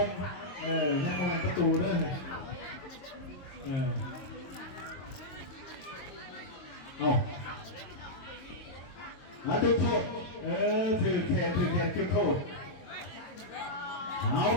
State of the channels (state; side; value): late; right; 22 ms